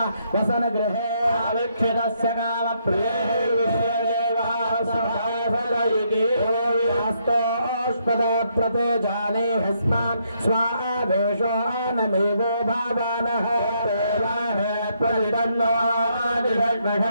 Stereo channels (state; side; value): inverted; both; correlation -0.74